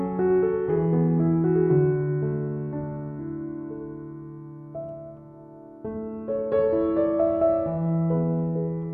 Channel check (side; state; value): both; identical; correlation 1.00